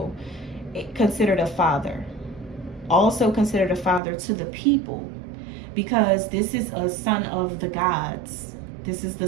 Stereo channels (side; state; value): left; drops out; at 4.0 s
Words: considered a father. Also considered a father to the people. Because this is a son of the gods. This is the